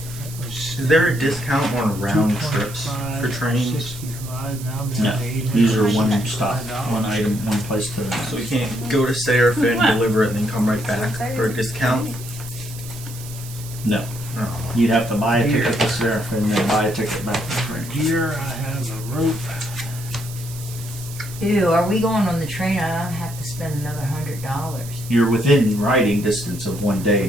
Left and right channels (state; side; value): noise; right; hiss, 14 dB below the sound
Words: was Is there a discount on round trips 225, for trains? 65, now I'm No, down to 800. these are one stop, one item, one place to the So we next. can't go to Seraphim, deliver it, and then come right back for a discount? No, Oh. you'd have to buy a ticket to Seraphim and then buy a ticket back to Fringe. Gear, I have a rope. Ew, are we going on the train? I don't have to spend another $100. You're within riding distance of 1 day